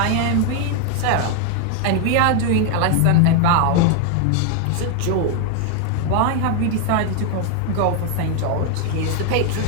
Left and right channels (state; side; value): different; both; correlation 0.01